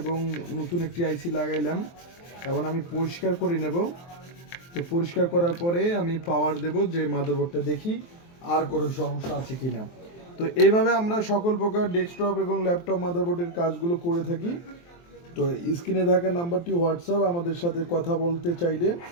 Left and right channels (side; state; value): right; late; 23 ms